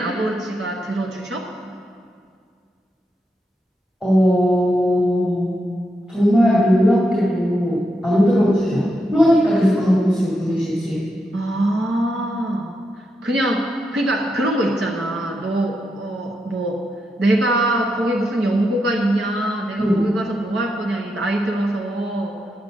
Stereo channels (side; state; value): both; normal; correlation 0.84